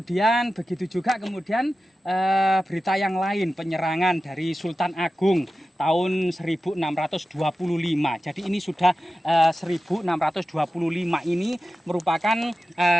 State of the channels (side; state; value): both; normal; correlation 0.94